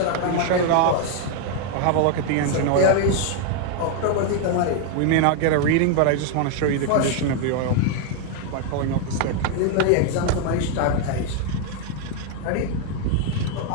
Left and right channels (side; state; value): both; different; correlation 0.00